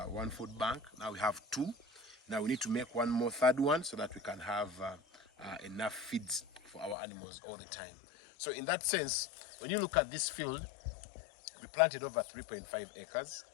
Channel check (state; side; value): drops out; right; at 7.0 s